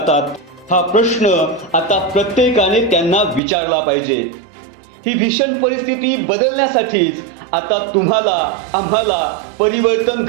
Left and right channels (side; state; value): left; drops out; at 3.4 s